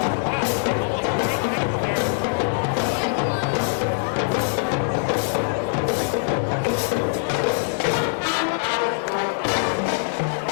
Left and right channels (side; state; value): right; silent; digital silence